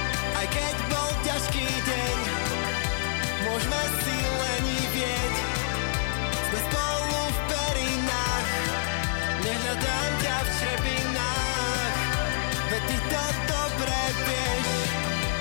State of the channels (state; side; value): silent; right; 55 dB below the other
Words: Aj keď bol ťažký deň, môžeme si lenivieť. Sme spolu v perinách, nehľadám ťa v črepinách. Veď ty to dobre vieš,